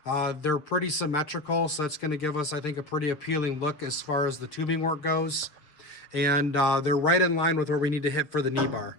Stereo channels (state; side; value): late; right; 6.5 ms